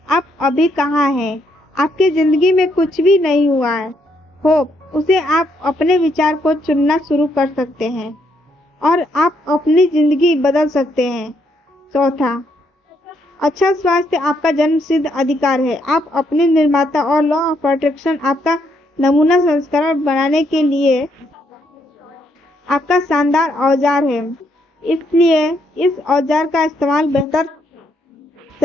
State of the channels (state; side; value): normal; both; correlation 0.74